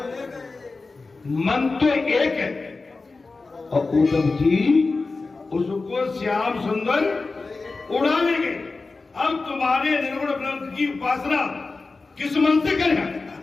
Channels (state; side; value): quieter; right; 3.8 dB